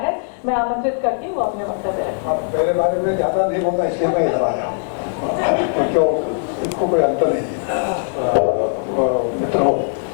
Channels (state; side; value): silent; right; digital silence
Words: मैं आमंत्रित करती हूँ अपने वक्तव्य रखें। मेरे बारे में ज्यादा नहीं बोलना इसलिए मैं इधर आया क्योंकि इसको कोई अंतर नहीं है। मित्रों,